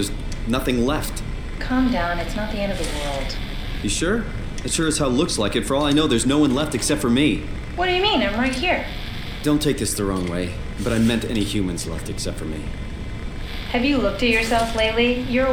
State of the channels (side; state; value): both; identical; correlation 1.00